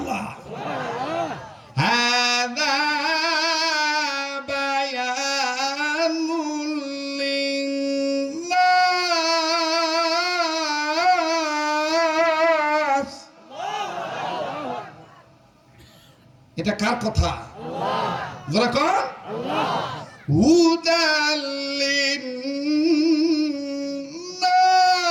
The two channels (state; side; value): identical; both; correlation 1.00